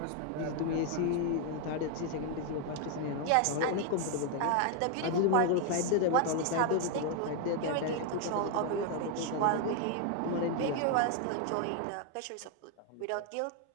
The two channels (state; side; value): different; both; correlation 0.01